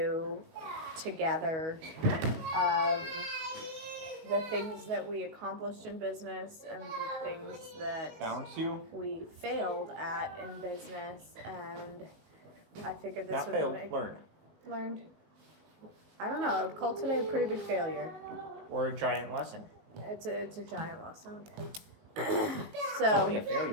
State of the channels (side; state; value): left; late; 19 ms